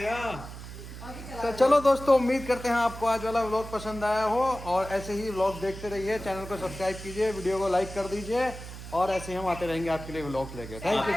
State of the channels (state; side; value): noise; right; hum, 12 dB below the sound